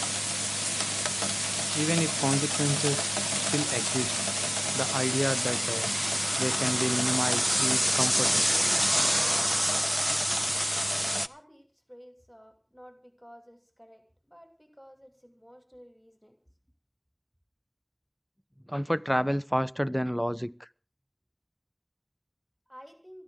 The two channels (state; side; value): identical; both; correlation 1.00